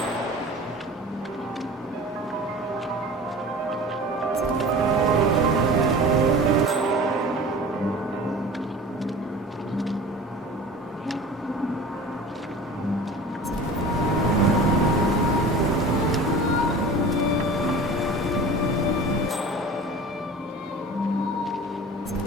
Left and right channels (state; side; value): normal; both; correlation 0.39